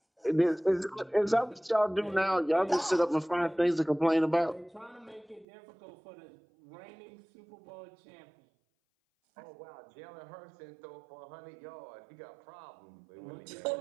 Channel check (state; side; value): drops out; left; at 5.5 s